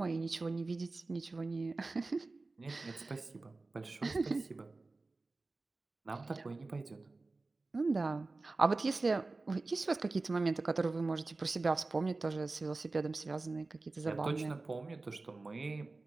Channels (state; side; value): quieter; left; 3.5 dB